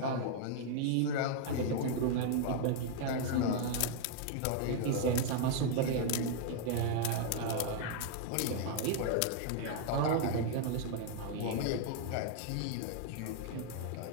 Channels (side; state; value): both; different; correlation 0.00